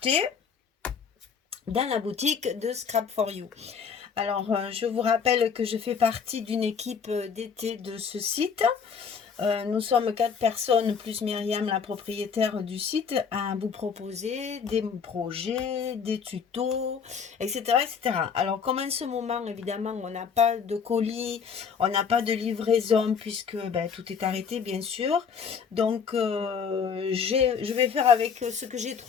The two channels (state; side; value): quieter; right; 6.4 dB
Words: dans la boutique de Scrap for You. Alors, je vous rappelle que je fais partie d'une équipe d'été de ce site. Nous sommes 4 personnes, plus Myriam, la propriétaire du site, à vous proposer des projets, des tutos, etc., etc. Alors, comme en ce moment, évidemment, on n'a pas de colis, on n'a pas de livraison, puisque ben, tout est arrêté, bien sûr. Donc, je vais faire avec ce que j'ai